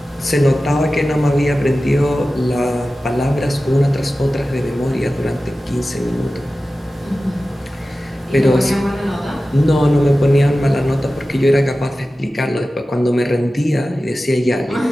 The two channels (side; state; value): both; normal; correlation 0.95